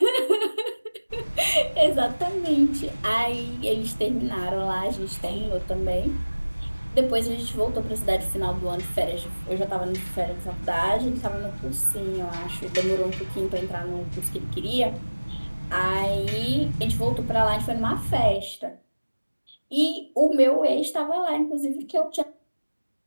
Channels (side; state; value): both; inverted; correlation -1.00